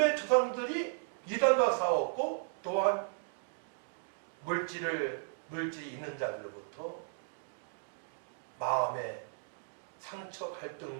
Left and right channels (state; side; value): silent; left; digital silence